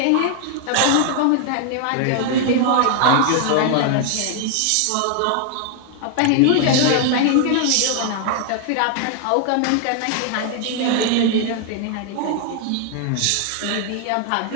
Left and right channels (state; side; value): different; both; correlation 0.00